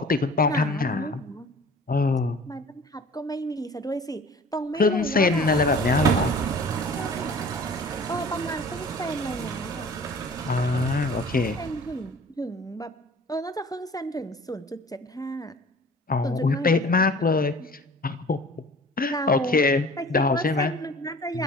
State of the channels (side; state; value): both; normal; correlation 0.46